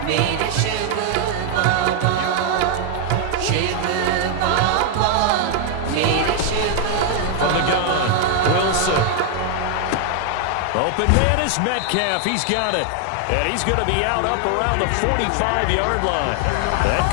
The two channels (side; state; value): both; different; correlation 0.00